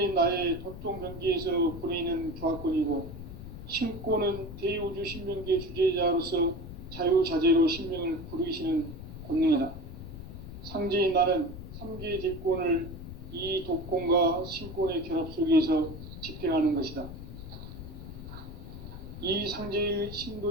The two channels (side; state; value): left; noise; rumble, 11 dB below the sound